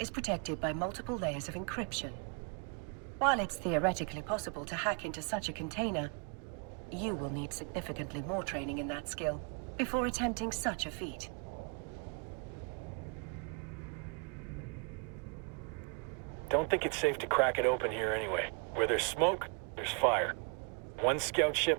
protected by multiple layers of encryption. While it's theoretically possible to hack into such a container, you will need significantly more training in that skill before attempting such a feat. Don't think it's safe to crack it open here anyway. Where there's smoke, there's fire. One scout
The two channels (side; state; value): left; quieter; 38.4 dB